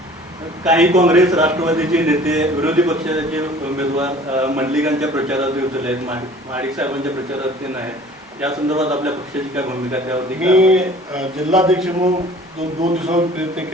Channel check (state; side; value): normal; both; correlation 0.48